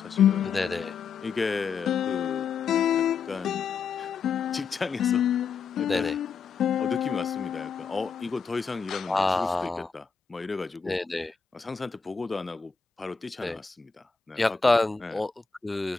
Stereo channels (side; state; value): right; quieter; 5.6 dB